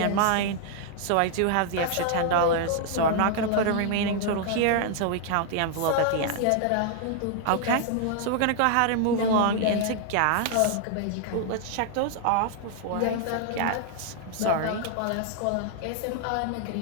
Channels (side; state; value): both; different; correlation 0.00